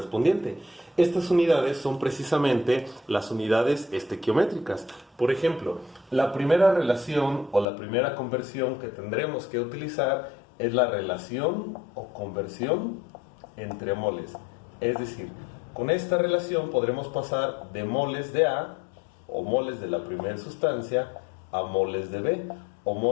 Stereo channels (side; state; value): right; drops out; at 7.7 s